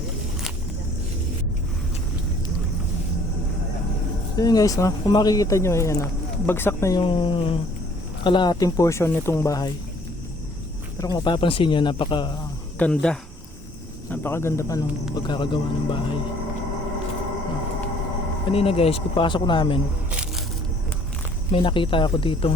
So yun guys, no? Kung makikita nyo, ayan, bagsak na yung kalahating portion nitong bahay. Pero kung mapapansin nyo, napakaganda pa nung pagkakagawa ng bahay. Kanina guys, pagpasok namin, may nakita ako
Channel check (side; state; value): both; normal; correlation 0.58